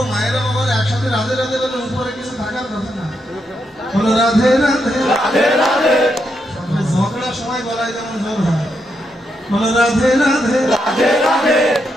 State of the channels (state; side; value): normal; both; correlation 0.81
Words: মায়েরা বাবার একসাথে রাধে রাধে বলে উপরে কিছু থাকার কথা না। বলো রাধে রাধে রাধে রাধে। ঝগড়ার সময় গলায় যেমন জোর হয়। বলো রাধে রাধে রাধে রাধে।